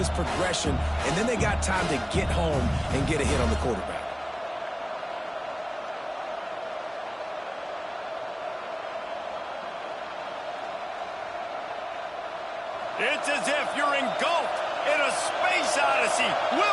progression, and then they got time to get home and get a hit on the quarterback. It's as if you're engulfed in a space odyssey.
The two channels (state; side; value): identical; both; correlation 1.00